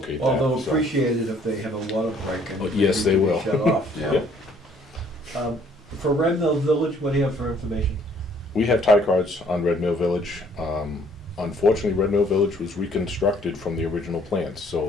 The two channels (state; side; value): normal; both; correlation 0.61